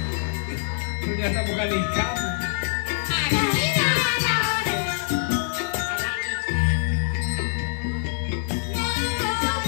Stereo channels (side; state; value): right; silent; 61 dB below the other